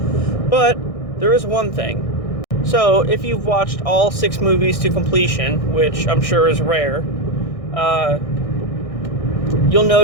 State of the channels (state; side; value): late; right; 1.6 ms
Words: But there is one thing. So, if you've watched all 6 movies to completion, which I'm sure is rare, you'll